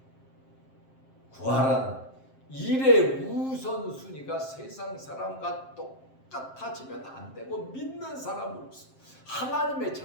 구하라는 일의 우선순위가 세상 사람과 똑같아지면 안 되고, 믿는 사람으로서, 하나님의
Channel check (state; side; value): late; right; 7.6 ms